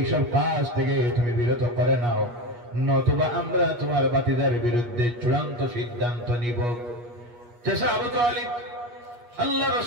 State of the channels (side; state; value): left; late; 8.4 ms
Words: কাজ থেকে তুমি বিরত করে নাও, নতুবা আমরা তোমার ভাতিজার বিরুদ্ধে চূড়ান্ত সিদ্ধান্ত নিব। চাচা আবু তালিব আল্লাহ